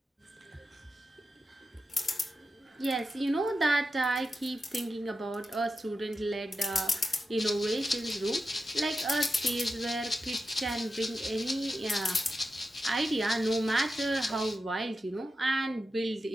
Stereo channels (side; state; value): both; normal; correlation 0.91